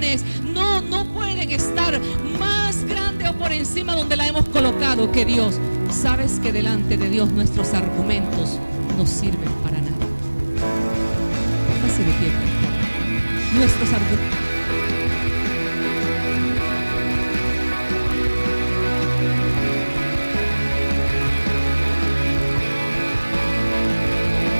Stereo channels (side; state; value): both; inverted; correlation -1.00